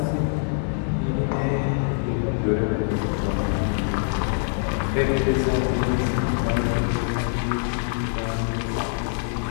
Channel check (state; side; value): silent; right; digital silence